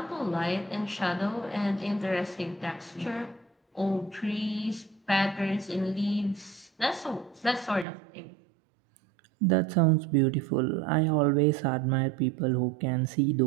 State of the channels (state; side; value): drops out; left; at 7.9 s